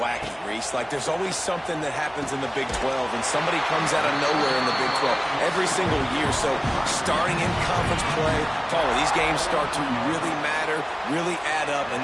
Reese. Like, there's always something that happens in the Big 12, and somebody comes out of nowhere in the Big 12 every single year. So, starting in conference play, Paula, these games start to really matter, really add up,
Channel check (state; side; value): identical; both; correlation 1.00